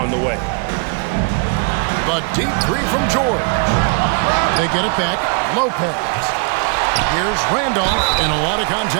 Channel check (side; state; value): left; quieter; 39.5 dB